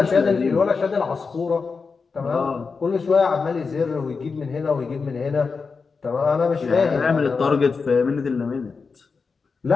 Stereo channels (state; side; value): quieter; right; 4.9 dB